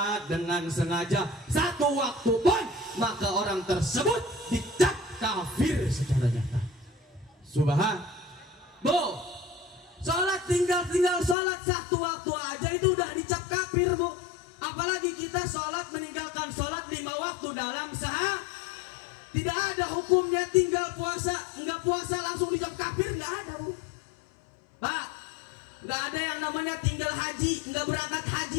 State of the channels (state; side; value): drops out; right; at 11.4 s